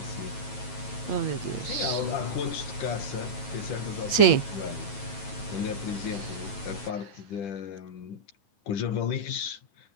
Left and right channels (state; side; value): late; right; 8.7 ms